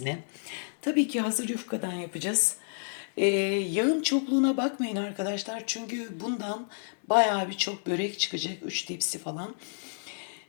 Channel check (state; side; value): silent; right; digital silence